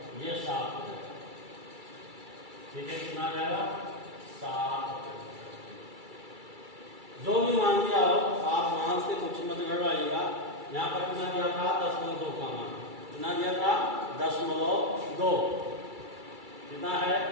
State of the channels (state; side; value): late; left; 2.3 ms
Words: ये 7 हो जाएगा। ठीक है, कितना जाएगा, 7। जो भी मान दिया हो आप मान से कुछ मत गड़बड़ाइएगा। यहाँ पर कितना दिया था, 10.2 का मान कितना दिया था, 10.2 कितना है,